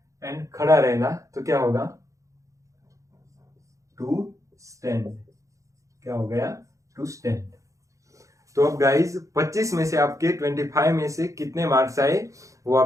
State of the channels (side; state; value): left; late; 0.15 ms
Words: एंड खड़ा रहना तो क्या होगा, टू स्टैंड। क्या हो गया, टू स्टैंड। तो अब गाइज 25 में से आपके 25 में से कितने मार्क्स आए वो